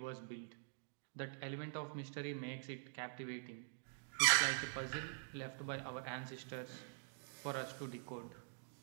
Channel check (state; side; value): silent; left; digital silence